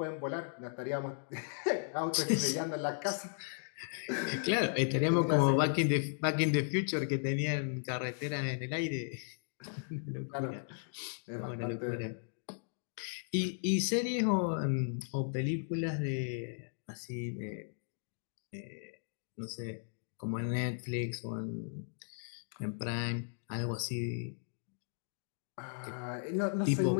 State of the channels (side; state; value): right; silent; digital silence